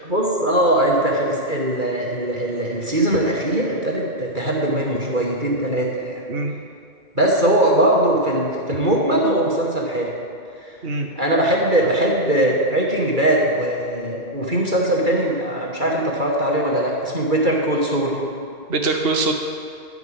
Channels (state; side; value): late; left; 2.3 ms